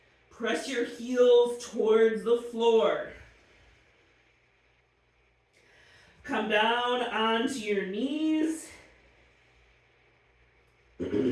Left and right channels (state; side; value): identical; both; correlation 1.00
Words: Press your heels towards the floor. Come down onto your knees.